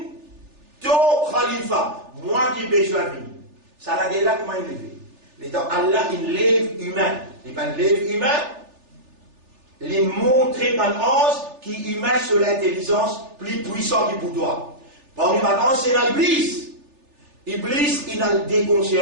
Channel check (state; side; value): late; left; 3.4 ms